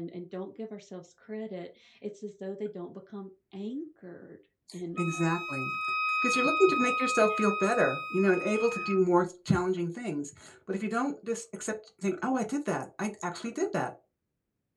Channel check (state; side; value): identical; both; correlation 1.00